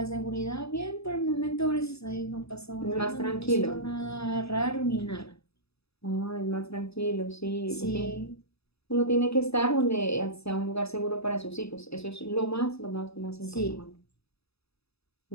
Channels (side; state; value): right; late; 0.78 ms